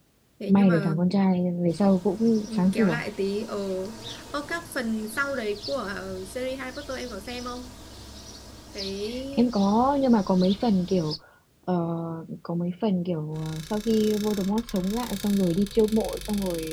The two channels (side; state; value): both; identical; correlation 1.00